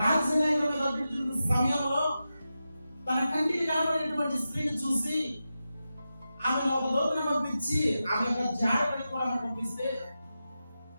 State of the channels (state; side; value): inverted; both; correlation -0.91